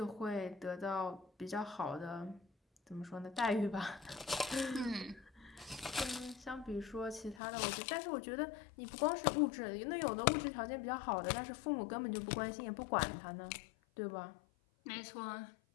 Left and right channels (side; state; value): right; drops out; at 7.4 s